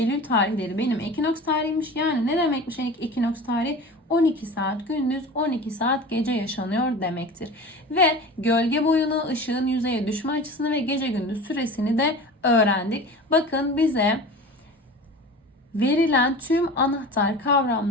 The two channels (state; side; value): normal; both; correlation 0.35